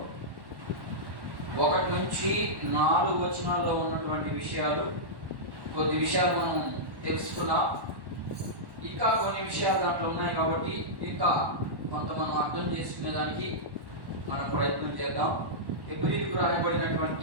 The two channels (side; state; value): left; late; 1.1 ms